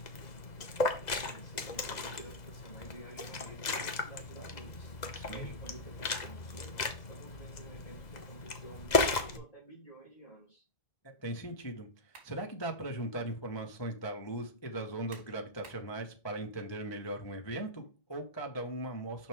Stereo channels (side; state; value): right; late; 2.0 ms